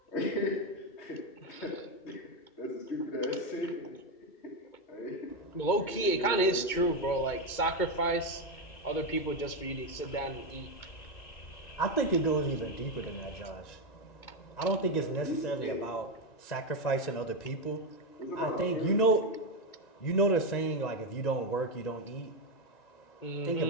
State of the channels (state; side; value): late; right; 2.2 ms